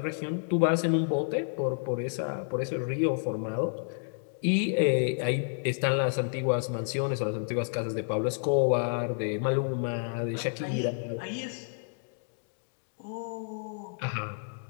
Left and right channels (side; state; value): right; silent; digital silence